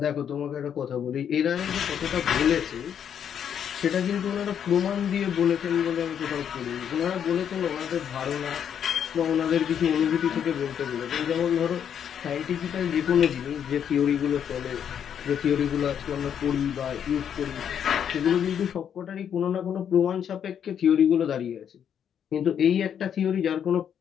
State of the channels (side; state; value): right; quieter; 8.6 dB